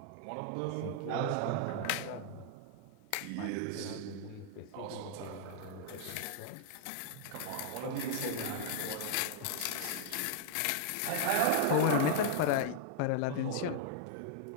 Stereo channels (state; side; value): different; both; correlation -0.01